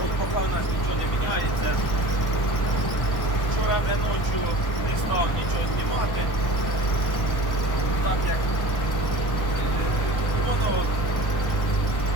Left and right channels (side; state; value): right; late; 1.1 ms